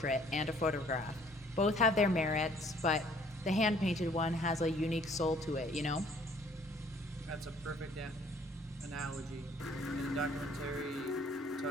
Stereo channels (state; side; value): normal; both; correlation 0.59